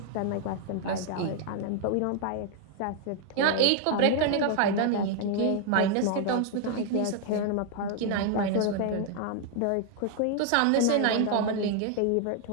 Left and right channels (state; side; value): different; both; correlation 0.00